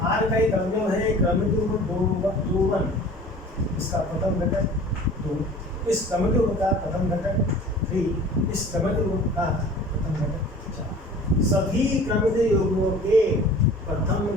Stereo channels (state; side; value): normal; both; correlation 0.44